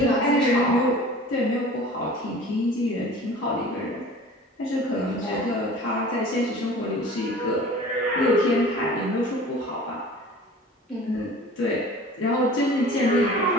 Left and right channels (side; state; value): both; normal; correlation 0.43